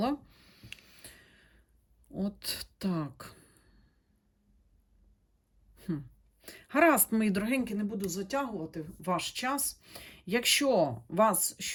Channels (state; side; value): identical; both; correlation 1.00